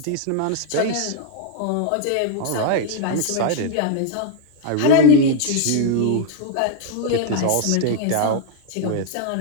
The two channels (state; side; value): different; both; correlation 0.00